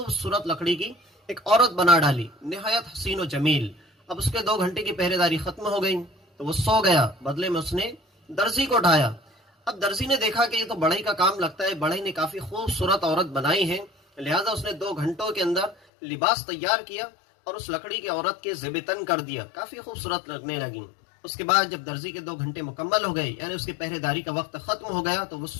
लकड़ी की एक औरत बना डाली, निहायत हसीन व जमील। अब उसके 2 घंटे की पहरेदारी खत्म हो गई तो वो सो गया। बदले में उसने दर्जी को उठाया। अब दर्जी ने देखा कि ये तो बढ़ई का काम लगता है, बढ़ई ने काफी खूबसूरत औरत बनाई है। लिहाजा उसने 2 घंटों के अंदर लिबास तैयार किया और उस लकड़ी की औरत के ज़ेबतन कर दिया, काफी खूबसूरत लगने लगी। उसके बाद जब दर्जी के 2 घंटे मुकम्मल हो गए, यानी उसकी पहरेदारी का वक्त खत्म हो गया, तो वो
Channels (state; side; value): drops out; right; at 15.8 s